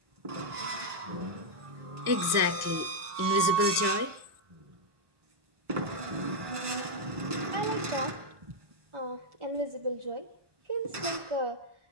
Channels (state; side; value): late; left; 1.2 ms